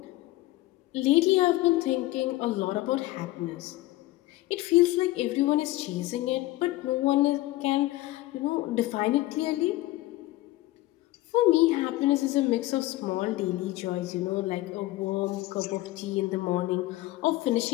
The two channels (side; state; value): right; quieter; 17.7 dB